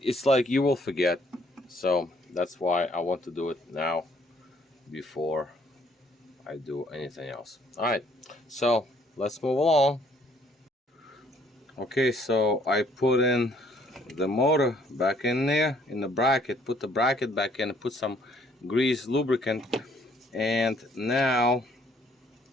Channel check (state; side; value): normal; both; correlation 0.64